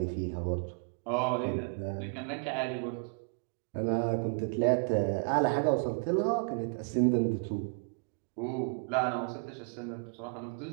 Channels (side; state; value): left; quieter; 37.9 dB